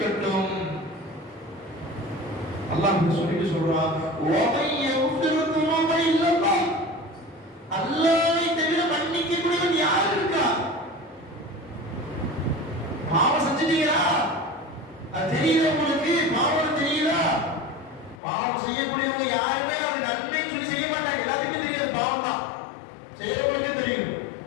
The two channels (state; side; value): drops out; right; at 18.2 s